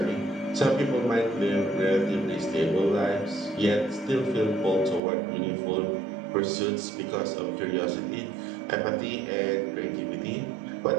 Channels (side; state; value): left; drops out; at 5.0 s